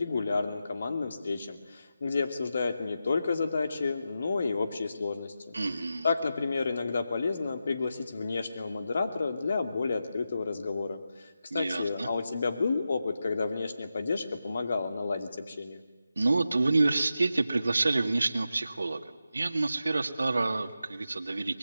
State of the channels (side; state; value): both; inverted; correlation -0.89